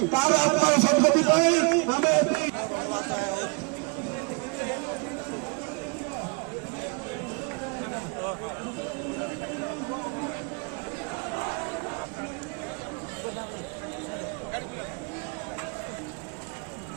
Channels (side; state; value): left; quieter; 33.0 dB